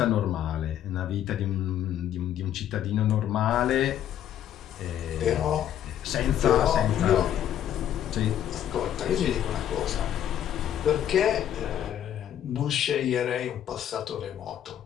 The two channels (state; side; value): quieter; right; 10.6 dB